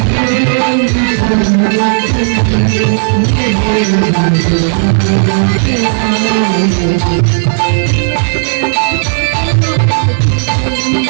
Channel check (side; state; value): left; silent; digital silence